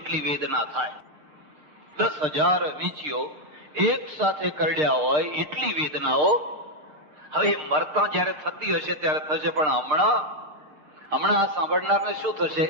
વેદના થાય. 10,000 વીંછીઓ એક સાથે કરડ્યા હોય એટલી વેદનાઓ. હવે મરતા જયારે થતી હશે ત્યારે થશે, પણ હમણાં આ સાંભળનારને શું થશે?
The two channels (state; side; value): late; left; 6.6 ms